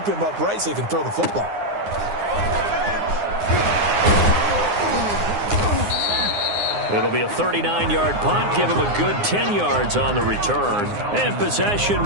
him upright so he can throw the football. It'll be a 39-yard punt. Give him a good 10 yards on the return. And possession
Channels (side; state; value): left; late; 9.7 ms